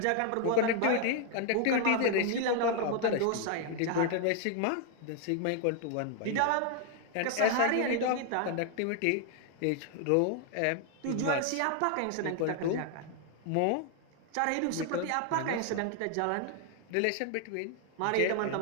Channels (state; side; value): different; both; correlation 0.00